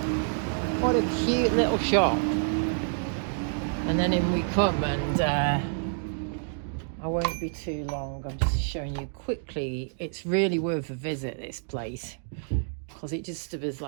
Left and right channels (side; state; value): left; silent; digital silence